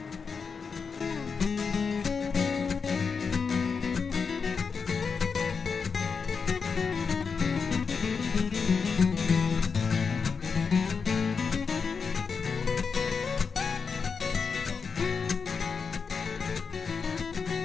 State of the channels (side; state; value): right; quieter; 5.5 dB